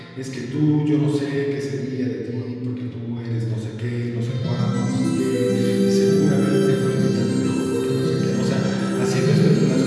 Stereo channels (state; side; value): identical; both; correlation 1.00